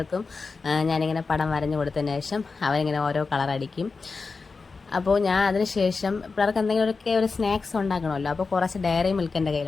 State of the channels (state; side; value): quieter; right; 4.4 dB